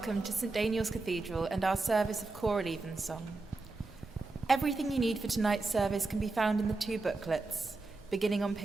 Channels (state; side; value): quieter; left; 3.4 dB